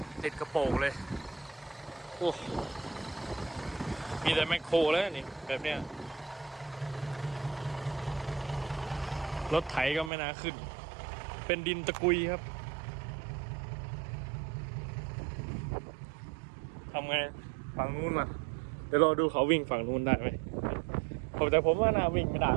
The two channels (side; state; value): left; drops out; at 10.1 s